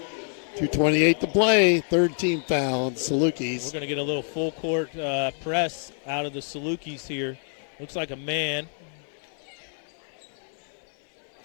2:28 to play. Third team foul on Salukis. We're going to get a little full court press out of the Salukis here. Looks like a man.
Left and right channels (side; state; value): right; silent; 60 dB below the other